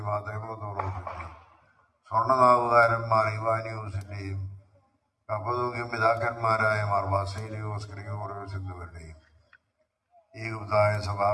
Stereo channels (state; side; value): identical; both; correlation 1.00